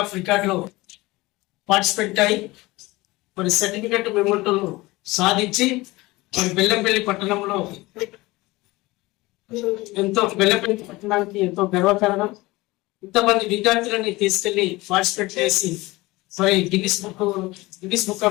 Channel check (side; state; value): right; quieter; 20.8 dB